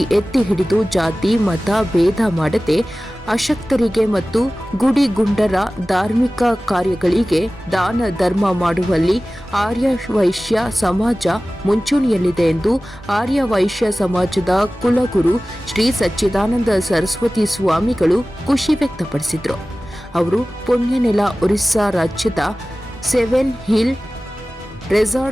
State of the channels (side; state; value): both; normal; correlation 0.97